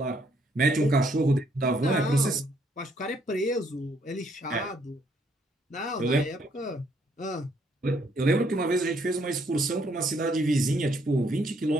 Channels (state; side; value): normal; both; correlation 0.69